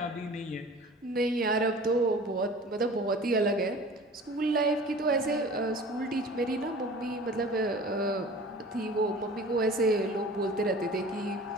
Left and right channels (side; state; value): both; normal; correlation 0.42